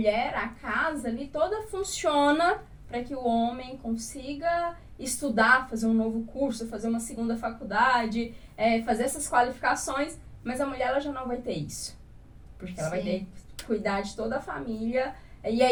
a casa ali toda funciona para que o homem consiga estudar, fazer um novo curso, fazer uma segunda faculdade, fazer essas qualificações, mas a mulher ela já não vai ter isso. Porque ela vai ter que cuidar de toda a família. E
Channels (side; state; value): both; identical; correlation 1.00